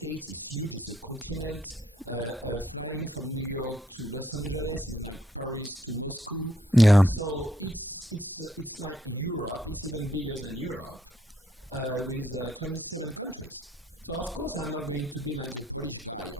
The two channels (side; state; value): both; normal; correlation 0.72